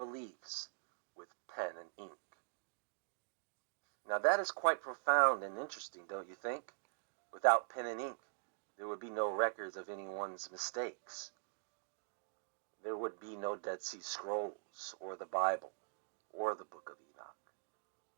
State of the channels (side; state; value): left; silent; digital silence